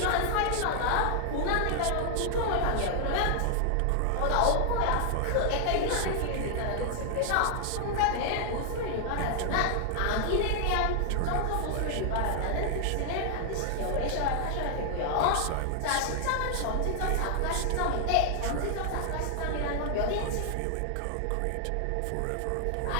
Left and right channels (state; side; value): different; both; correlation 0.00